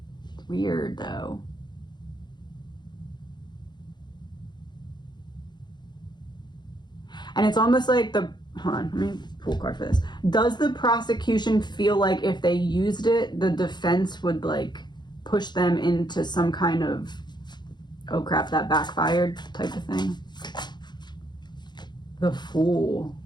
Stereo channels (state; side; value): late; right; 0.21 ms